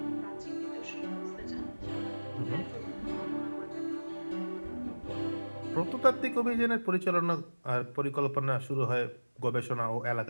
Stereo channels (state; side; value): inverted; both; correlation -1.00